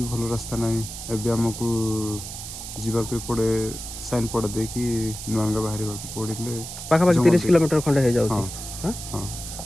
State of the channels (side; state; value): right; noise; hiss, 9 dB below the sound